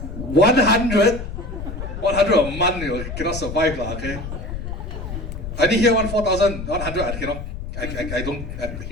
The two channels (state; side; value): noise; left; rumble, 7 dB below the sound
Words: 100? 100 a month, you cannot survive, okay? I didn't hear 4,000, 100, I cannot, I don't,